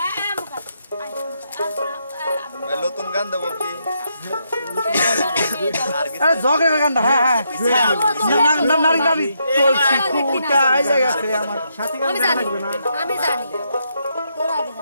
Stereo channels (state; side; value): inverted; both; correlation -0.78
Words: নতুন গান দেবো কি আরে ঝগড়া গান হ্যাঁ হ্যাঁ না নারী নারী চলছি কুটা আই জায়গাতে আমার সাথী গান লাগবে না আমি জানি তোরা আগে